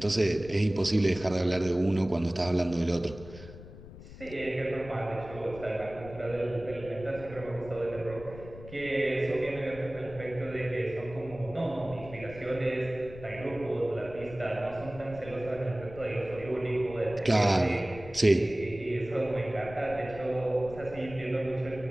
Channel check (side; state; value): left; noise; rumble, 15 dB below the sound